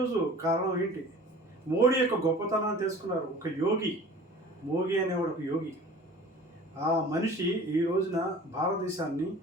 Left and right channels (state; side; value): normal; both; correlation 0.44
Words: కారణం ఏంటి? మోడీ యొక్క గొప్పతనాన్ని తెలుసుకున్నారు. ఒక యోగి, మోడీ అనేవాడు ఒక యోగి. ఆ మనిషి ఈ రోజున భారతదేశాన్ని